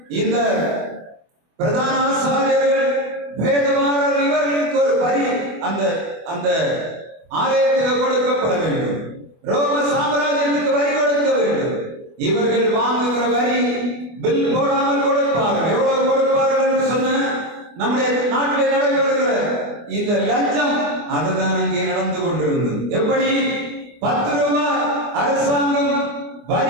இந்த பிரதான ஆசாரியர்கள், வேதவாரர், இவர்களுக்கு ஒரு வரி அந்த ஆலயத்துக்கு கொடுக்கப்பட வேண்டும். ரோம சாம்ராஜ்யத்துக்கு வரி கொடுக்க வேண்டும். இவர்கள் வாங்குகிற வரி பில் போடாமல் கொடுப்பார்கள். எவ்வளவு கொடுப்பார்கள் என்று சொன்ன நம்முடைய நாட்டில் நடைபெறுகிற இந்த லஞ்சம் அதுதான் அங்கே நடந்து கொண்டிருந்தது. எப்படி 10 ரூபாய் அரசாங்கம்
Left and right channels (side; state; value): left; late; 24 ms